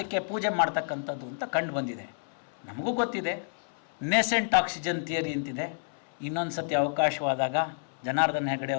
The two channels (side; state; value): right; silent; 58 dB below the other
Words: ಪೂಜೆ ಮಾಡ್ತಕ್ಕಂಥದ್ದು ಅಂತ ಕಂಡು ಬಂದಿದೆ. ನಮಗೂ ಗೊತ್ತಿದೆ ನೇಸೆಂಟ್ ಆಕ್ಸಿಜನ್ ಥಿಯರಿ ಅಂತಿದೆ. ಇನ್ನೊಂದು ಸತಿ ಅವಕಾಶವಾದಾಗ ಜನಾರ್ದನ್ ಹೆಗಡೆ